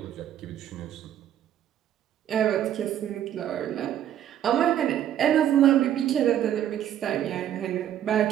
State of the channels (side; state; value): left; quieter; 10.8 dB